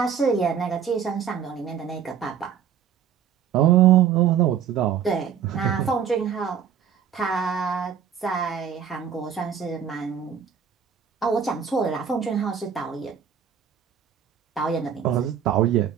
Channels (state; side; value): quieter; left; 8.1 dB